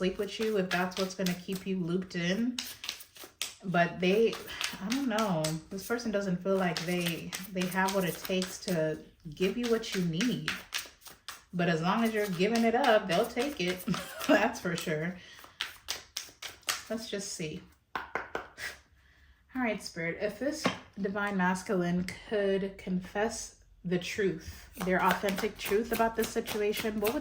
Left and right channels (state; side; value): identical; both; correlation 1.00